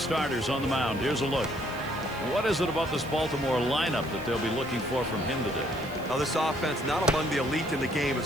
on the mound. Here's a look. What is it about this Baltimore lineup that they'll be looking for from him today? Now, this offense, not among the elite in the game, is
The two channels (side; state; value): right; noise; hiss, 21 dB below the sound